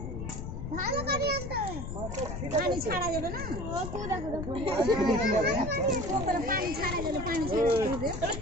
ভালো পানি আনতে হবে, পানি ছাড়া যাবে না। ও তো দেখো দেখো পানি ছাড়া যাবে, পানি ছাড়া যাবে।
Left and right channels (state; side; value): noise; left; rumble, 6 dB below the sound